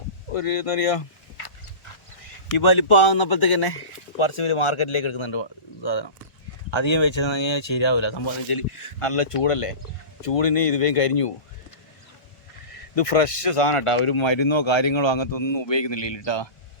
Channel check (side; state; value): right; late; 1.4 ms